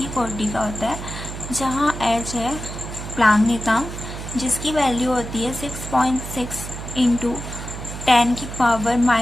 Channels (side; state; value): right; noise; hum, 9 dB below the sound